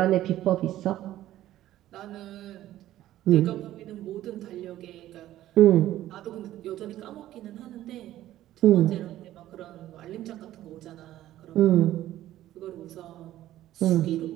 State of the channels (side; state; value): left; quieter; 13.8 dB